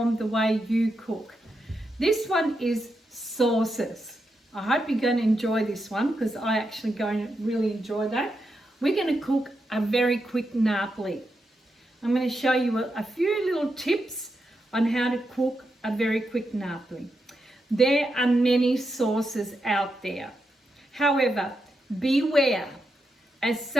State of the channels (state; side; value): normal; both; correlation 0.85